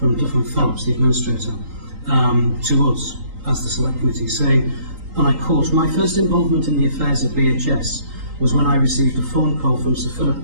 Duff and Phelps, the administrator, to us as the Select Committee, saying, and I quote, "My first involvement in the affairs of BHS was when I received a phone call from Sir Philip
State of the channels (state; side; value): late; left; 3.8 ms